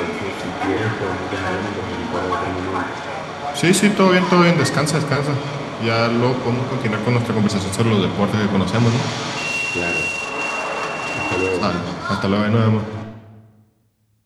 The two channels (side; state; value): both; identical; correlation 1.00